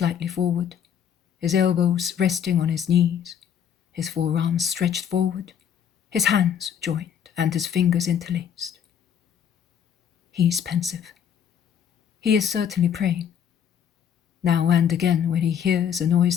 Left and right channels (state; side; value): quieter; right; 8.6 dB